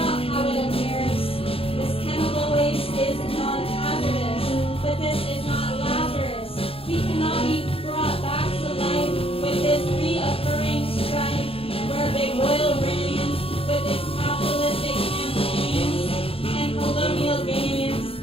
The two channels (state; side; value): late; right; 0.27 ms